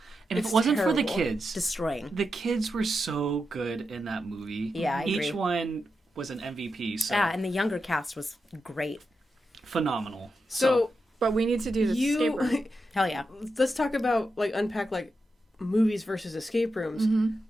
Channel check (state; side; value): normal; both; correlation 0.88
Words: And if It's it wasn't for the terrible. kids, destroying. the kids were so good in that movie. Yeah, I Each agree. one was an MVP, so Yeah, and the younger cast was great. phenomenal. So But we need to do the escape room. you... Hell yeah. Let's talk about, like, unpack, like, movies versus escape rooms.